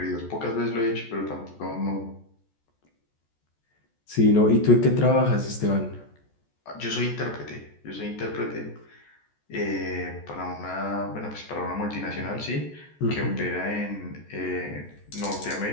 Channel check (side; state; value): right; late; 14 ms